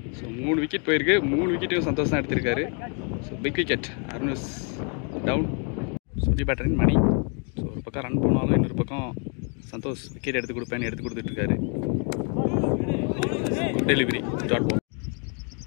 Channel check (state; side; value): quieter; right; 39.0 dB